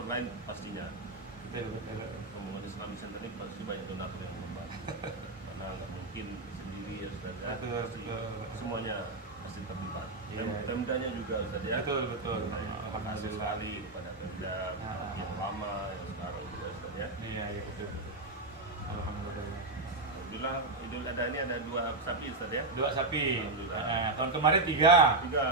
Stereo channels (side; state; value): left; quieter; 3.2 dB